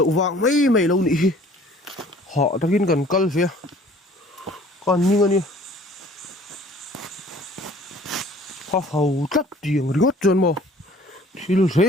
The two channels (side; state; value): both; normal; correlation 0.52